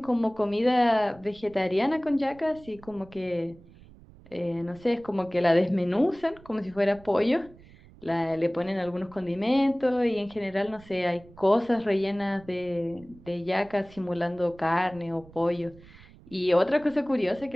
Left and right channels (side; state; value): right; noise; rumble, 23 dB below the sound